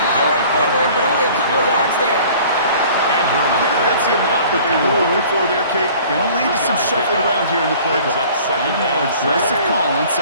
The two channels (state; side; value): inverted; both; correlation -0.49